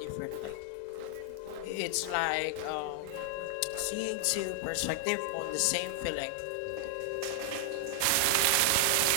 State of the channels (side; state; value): both; different; correlation 0.00